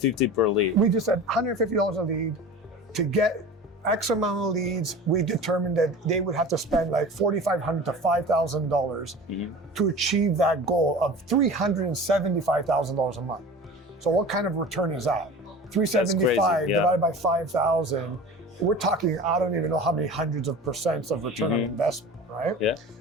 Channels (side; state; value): both; normal; correlation 0.36